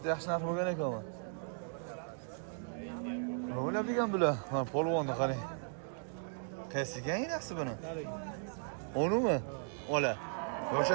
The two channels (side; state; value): left; silent; digital silence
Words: Yaxshi narx bo'lgan ekan. Nima o'ylab degan bular? Ha, polvonni qarang. Qaysigan inasi buni? Onimi? Ola.